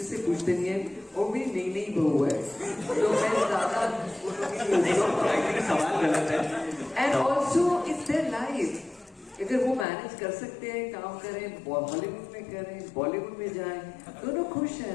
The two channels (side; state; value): right; drops out; at 9.9 s